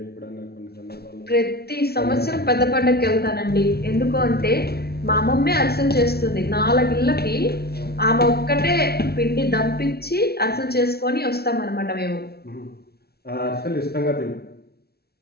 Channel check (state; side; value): late; right; 0.46 ms